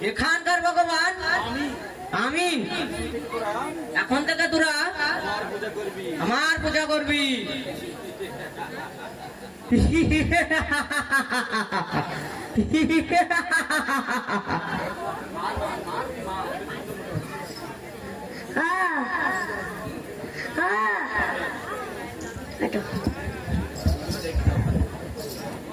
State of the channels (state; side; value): identical; both; correlation 1.00